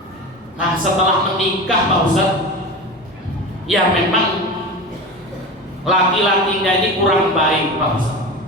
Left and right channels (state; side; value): normal; both; correlation 0.28